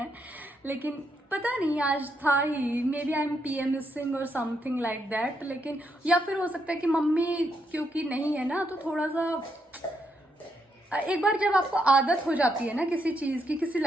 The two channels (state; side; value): normal; both; correlation 0.79